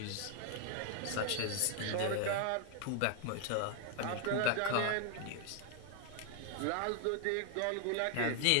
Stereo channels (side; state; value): both; different; correlation 0.00